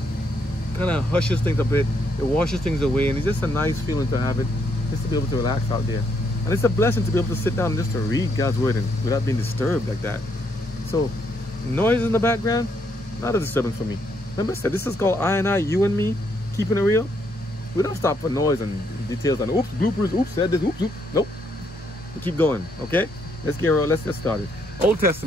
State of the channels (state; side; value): normal; both; correlation 0.74